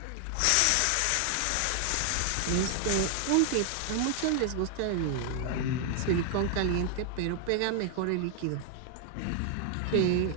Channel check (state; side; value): different; both; correlation 0.00